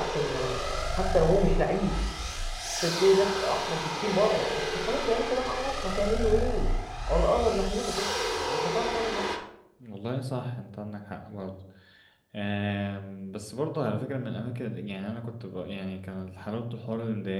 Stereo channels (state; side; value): identical; both; correlation 1.00